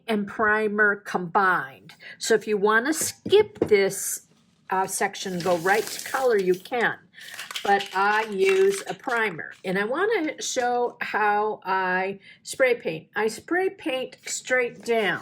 and primer combined. So if you want to skip this section, go right to color, you can. But I use a primer, and I want to show how I spray paint. I spray paint straight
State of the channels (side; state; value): both; identical; correlation 1.00